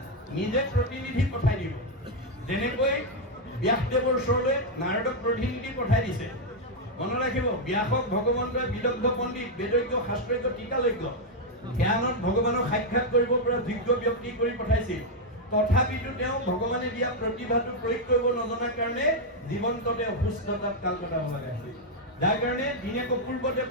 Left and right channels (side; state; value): both; normal; correlation 0.00